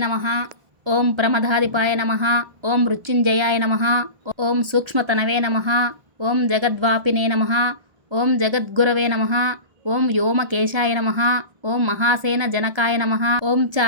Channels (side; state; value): left; late; 1.3 ms